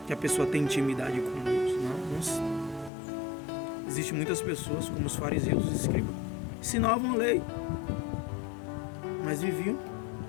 que a pessoa tem intimidade com Deus. Não. Existem muitas pessoas, como os fariseus, os escribas, ensinavam a lei, mas viviam,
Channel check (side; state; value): right; drops out; at 2.9 s